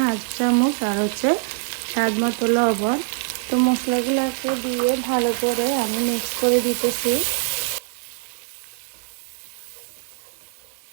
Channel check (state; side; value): silent; left; 63 dB below the other